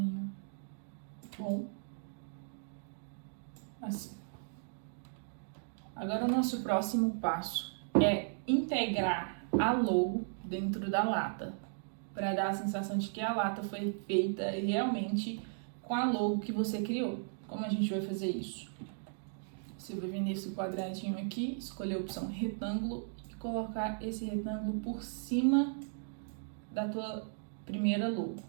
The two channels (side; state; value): left; silent; digital silence